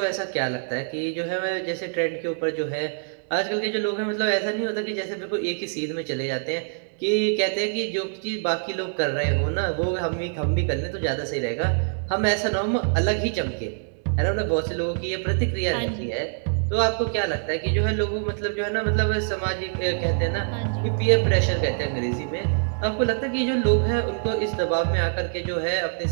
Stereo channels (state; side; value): silent; left; digital silence